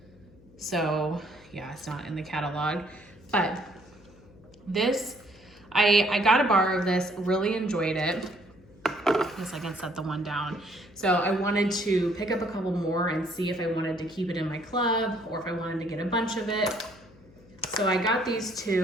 So yeah, it's not in the catalog, but this, I got a bar of this, really enjoyed it. I guess I can set the one down. So I wanted to pick up a couple more and see if I wanted to keep it in my club or if I wanted to get a bunch of it. So I got these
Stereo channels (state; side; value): noise; left; hum, 25 dB below the sound